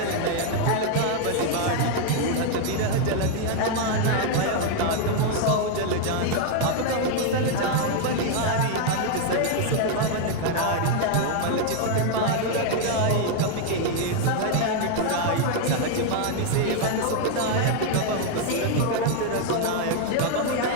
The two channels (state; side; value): different; both; correlation 0.00